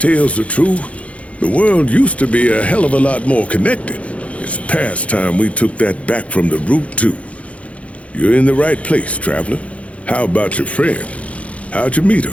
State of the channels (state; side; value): late; right; 0.064 ms